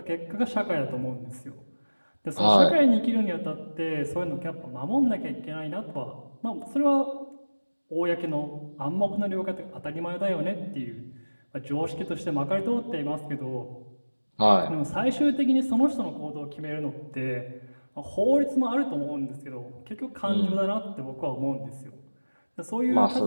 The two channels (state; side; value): inverted; both; correlation -1.00